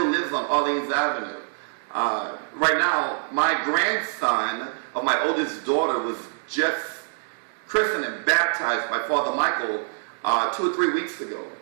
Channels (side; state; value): left; silent; digital silence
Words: lives on Orleans Avenue. Right now, my grandson of my oldest daughter was just christened and baptized by Father Michael 2 or 3 weeks ago.